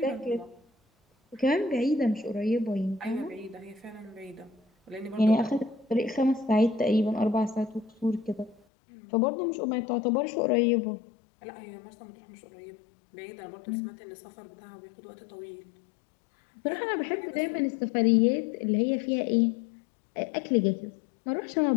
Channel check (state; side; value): drops out; right; at 8.6 s